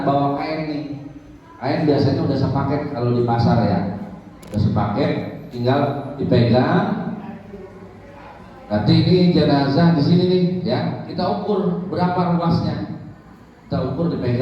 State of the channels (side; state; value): both; identical; correlation 1.00